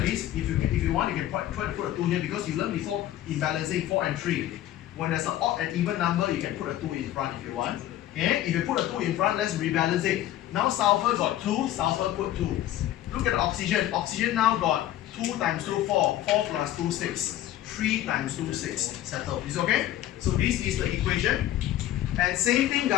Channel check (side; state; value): right; quieter; 13.2 dB